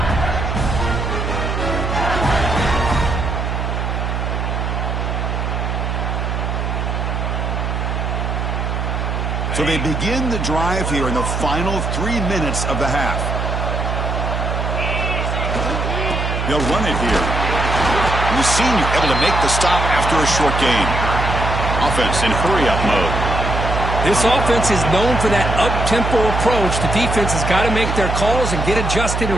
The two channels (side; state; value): right; noise; hum, 2 dB below the sound